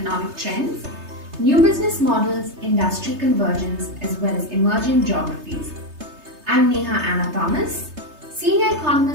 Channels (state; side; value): late; left; 3.3 ms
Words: trends, new business models, industry convergence, as well as emerging geographies. I'm Neha Anna Thomas, Senior